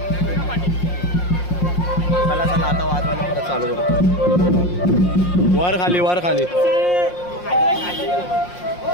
चला चला आता वाजवायला परत चालू करू. वर खाली वर खाली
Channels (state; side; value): late; right; 5.6 ms